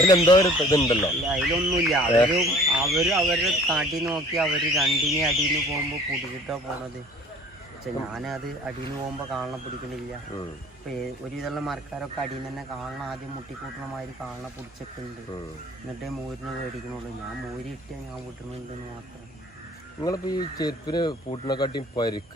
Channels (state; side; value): normal; both; correlation 0.51